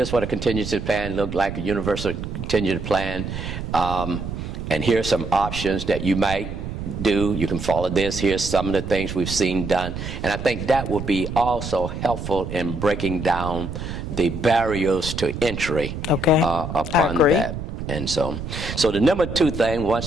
what a contingency plan looked like, a universal contingency plan, and here's some options that you might do. You can follow this. Here's some of the things we've seen done. And I think that would be also helpful in breaking down the barriers to entry upon that. And so the number two thing, once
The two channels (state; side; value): noise; right; rumble, 7 dB below the sound